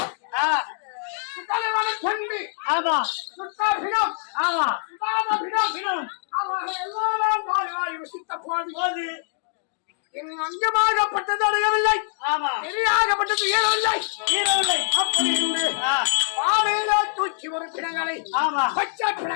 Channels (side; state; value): right; silent; digital silence